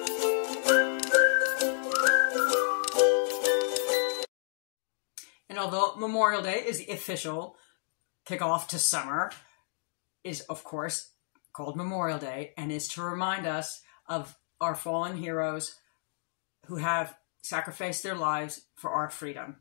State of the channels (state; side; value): silent; right; digital silence